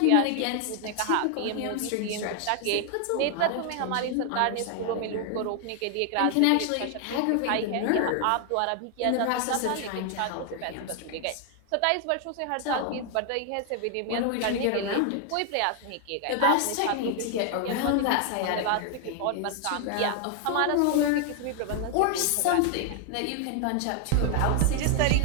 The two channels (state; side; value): different; both; correlation 0.00